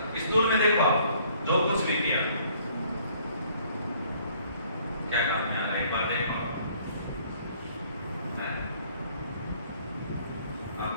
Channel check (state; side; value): inverted; both; correlation -0.60